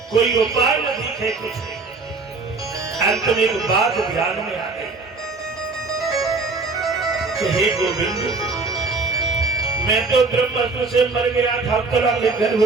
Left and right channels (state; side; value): quieter; left; 4.0 dB